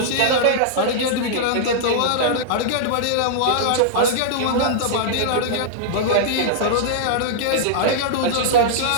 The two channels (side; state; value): both; different; correlation -0.02